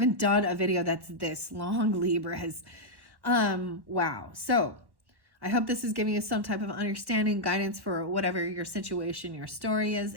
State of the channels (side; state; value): left; late; 1.1 ms